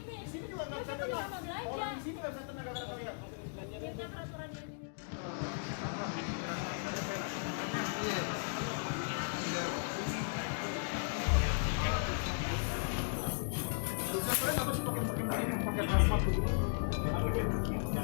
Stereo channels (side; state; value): right; silent; digital silence